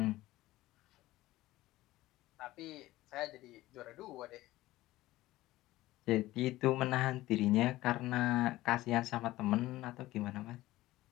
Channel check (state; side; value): quieter; right; 17.0 dB